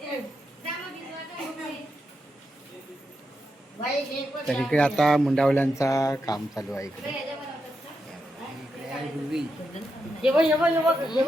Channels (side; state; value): both; normal; correlation 0.85